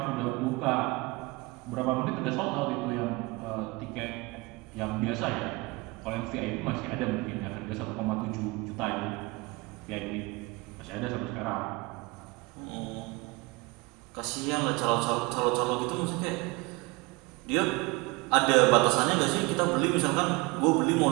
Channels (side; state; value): left; quieter; 24.8 dB